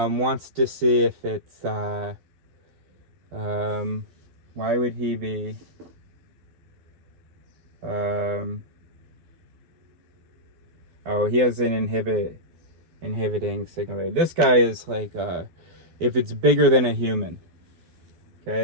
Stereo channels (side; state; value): left; late; 12 ms